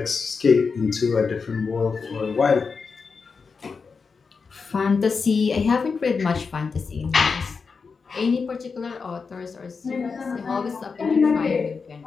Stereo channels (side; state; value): right; quieter; 5.1 dB